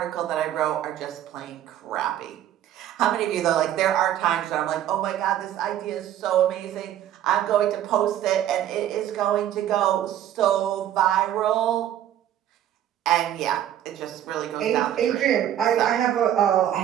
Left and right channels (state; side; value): quieter; left; 11.4 dB